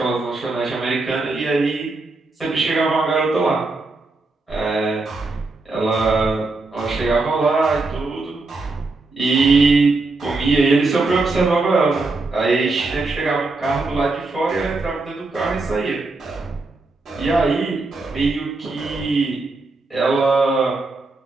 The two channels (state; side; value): quieter; left; 3.4 dB